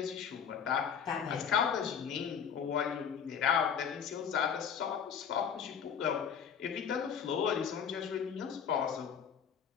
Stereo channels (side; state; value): right; quieter; 7.5 dB